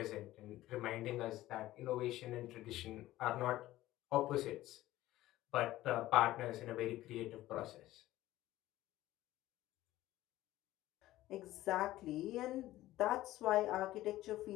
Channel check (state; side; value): quieter; right; 15.7 dB